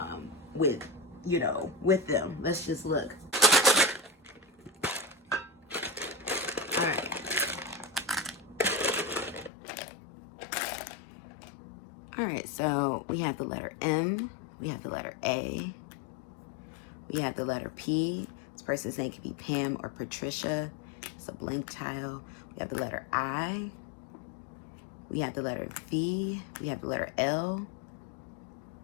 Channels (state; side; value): drops out; right; at 9.5 s